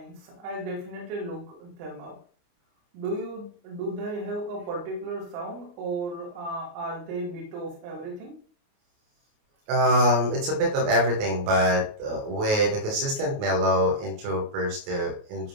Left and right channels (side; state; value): left; late; 28 ms